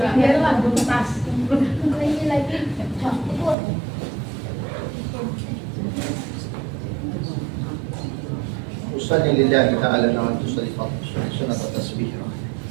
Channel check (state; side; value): drops out; left; at 3.6 s